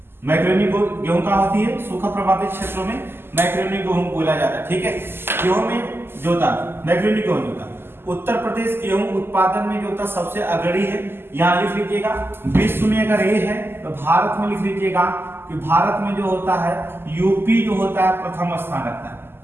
मैक्रोनी गेहूं कहाँ होती है, सूखा प्रभावित क्षेत्रों में मैक्रोनी गेहूं बोला जाता है, ठीक है। गेहूं में जो होता मैक्रोनी गेहूं जो होता उत्तर प्रदेश गेहूं उत्पादन में जो होता सबसे अग्रणी है, यहाँ लिख लीजिएगा। विश्व में अगर ये है तो भारत में लिख लीजिएगा कि भारत में जो होता है यूपी जो होता है प्रथम स्थान रखता है,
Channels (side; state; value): left; late; 0.11 ms